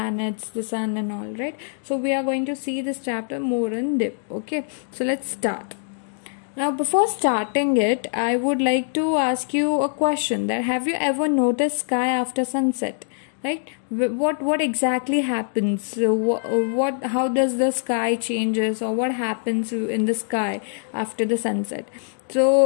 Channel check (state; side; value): silent; right; digital silence